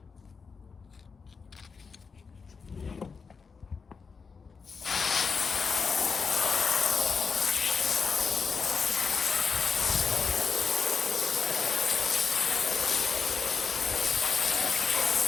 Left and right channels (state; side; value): quieter; right; 5.3 dB